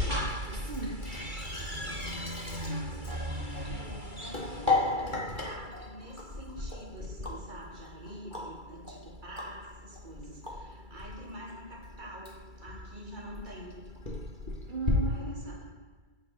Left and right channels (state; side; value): late; left; 2.3 ms